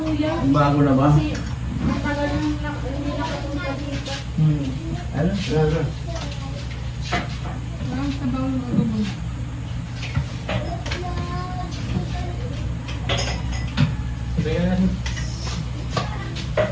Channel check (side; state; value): both; identical; correlation 1.00